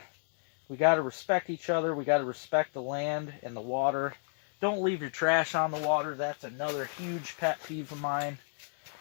respect each other. We gotta respect the land and the water. Don't leave your trash on the water. That's another huge pet peeve of mine.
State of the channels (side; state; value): right; silent; 56 dB below the other